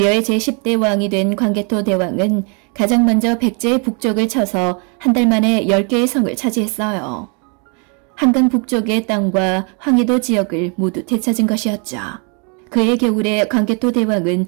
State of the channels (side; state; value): left; quieter; 36.6 dB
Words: 제10대 왕이 된 광개토 대왕은 가장 먼저 백제의 북쪽을 쳐서 한 달 만에 10개의 성을 차지했어요. 한강 북쪽의 땅과 황해도 지역을 모두 되찾은 것이었죠. 그해 겨울에 광개토 대왕은